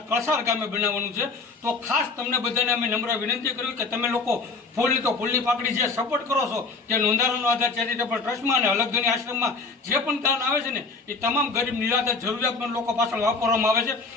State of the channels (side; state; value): right; quieter; 4.1 dB